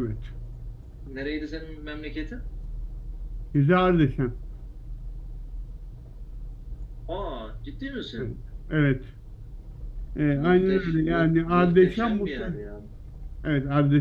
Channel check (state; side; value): identical; both; correlation 1.00